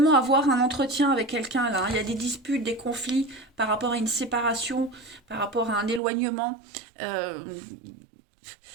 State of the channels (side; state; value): left; drops out; at 6.0 s